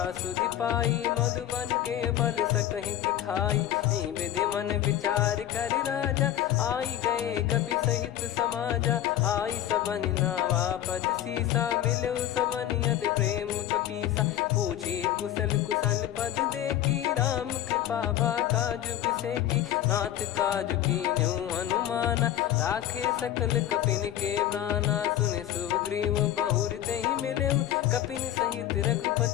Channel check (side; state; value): right; quieter; 12.0 dB